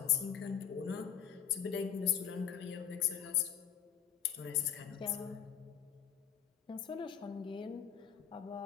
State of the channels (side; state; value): right; quieter; 8.7 dB